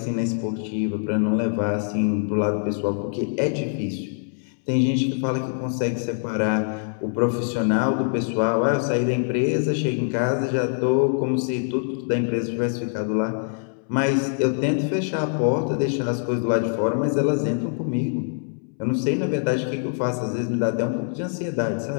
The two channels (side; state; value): right; silent; 63 dB below the other